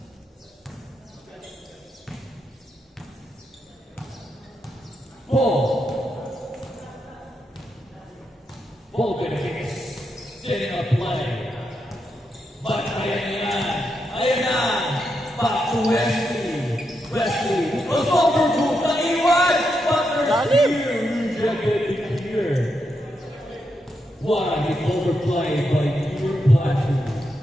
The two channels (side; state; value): both; normal; correlation 0.83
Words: Ball benefits. Setting up play. But ayan na. Back to Wesley. Wesley. Goes over to Taiwan. But there's rejected here. What an overplay by Pure Plateau.